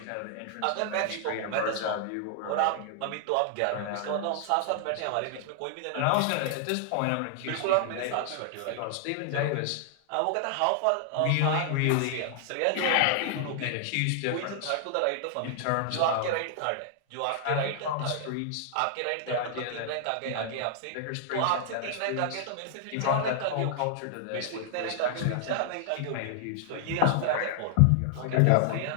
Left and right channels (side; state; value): both; different; correlation 0.00